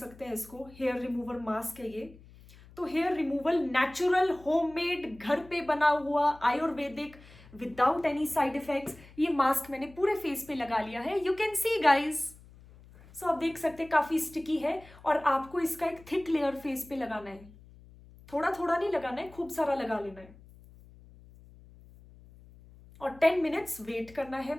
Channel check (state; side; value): noise; left; hum, 22 dB below the sound